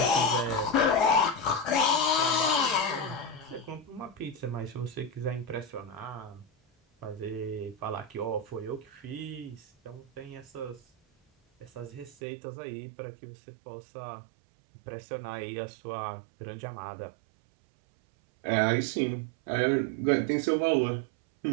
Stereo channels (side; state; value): left; drops out; at 12.2 s